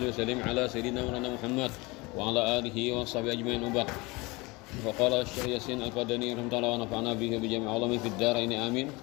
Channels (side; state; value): right; quieter; 24.4 dB